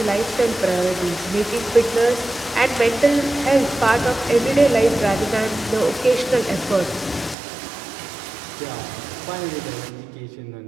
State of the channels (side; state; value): left; drops out; at 7.4 s